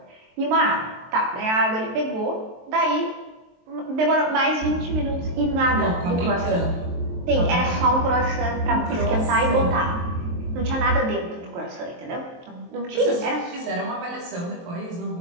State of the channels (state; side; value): late; left; 23 ms